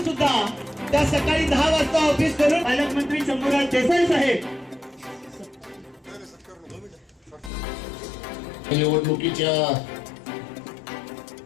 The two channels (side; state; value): right; drops out; at 7.5 s